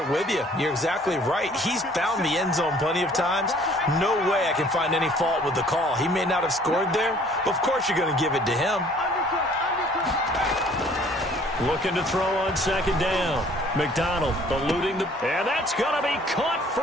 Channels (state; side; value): normal; both; correlation 0.56